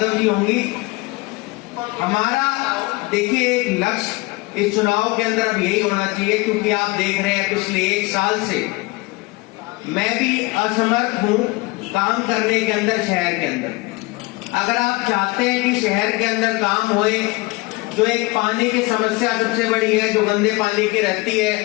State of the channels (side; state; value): right; quieter; 23.5 dB